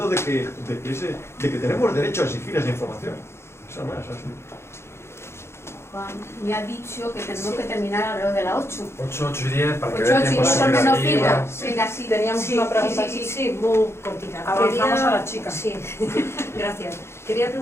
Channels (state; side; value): late; right; 0.12 ms